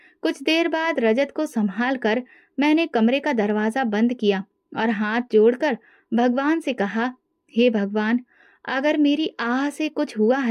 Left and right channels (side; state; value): both; identical; correlation 1.00